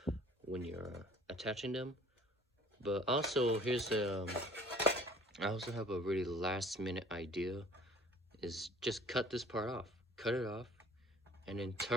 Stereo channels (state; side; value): normal; both; correlation 0.52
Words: when you're attaching them. But also, I also have a really last minute idea, is just cut this part off. Cut it off, and then